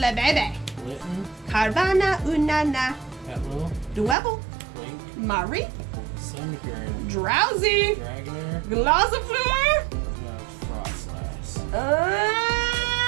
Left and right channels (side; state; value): left; drops out; at 4.2 s